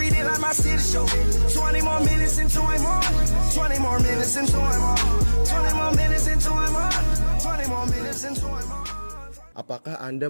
it like my city show. 20 more minutes into I'm on. 20 more minutes into I'm on. 20 more minutes into I'm on. 20 more minutes into I'm on. Apakah Anda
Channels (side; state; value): both; inverted; correlation -1.00